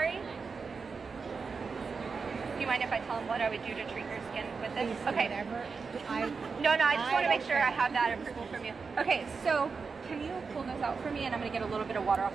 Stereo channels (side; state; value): left; quieter; 5.0 dB